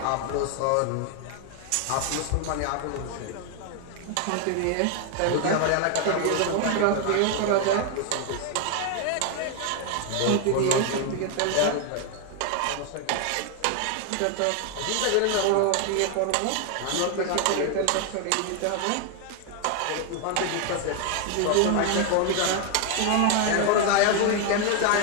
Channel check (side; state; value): both; different; correlation 0.01